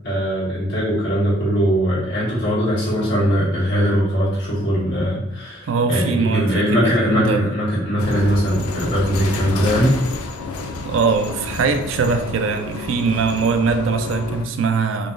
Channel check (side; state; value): both; normal; correlation 0.59